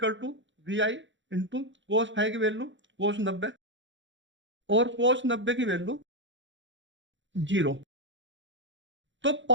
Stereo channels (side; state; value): left; late; 0.54 ms